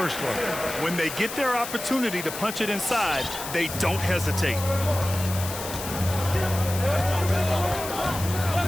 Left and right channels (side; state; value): left; noise; hiss, 8 dB below the sound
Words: one. When they get their opportunity to punch it inside, they don't hesitate.